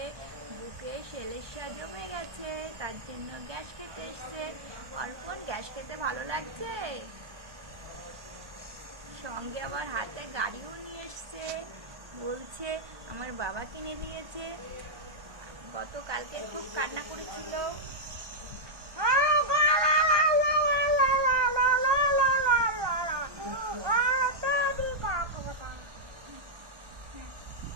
বুকে সেলেসা জমে গেছে, তার জন্য গ্যাস খেতে এসছে। অর্পণ গ্যাস খেতে ভালো লাগছে, সঙ্গে আবার হাতে গাড়িও নিয়ে এসছে, বলছে আমার বাবা কিনে দিয়েছে। গতকালকে খুব কান্না করেছিল।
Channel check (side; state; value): left; late; 1.2 ms